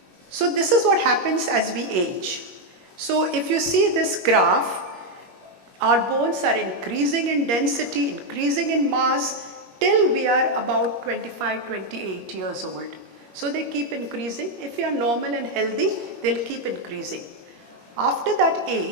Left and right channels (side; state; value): left; late; 21 ms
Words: So this is what happens as we age. So if you see this graph, our bones are increasing in density, increasing in mass till we are about 25, 28 years old. So they keep increasing. If you are normal and healthy, they'll keep increasing. After that